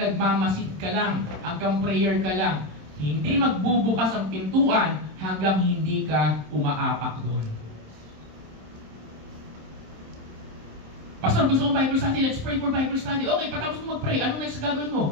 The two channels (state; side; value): late; left; 27 ms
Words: ka lang, hanggang prayer ka lang. Hindi magbubukas ang pintuan hanggang hindi ka umaapak doon. Pastor, gusto kong Bible study. Let's pray for Bible study. Okay, patapos mo mag-pray. Anong next gagawin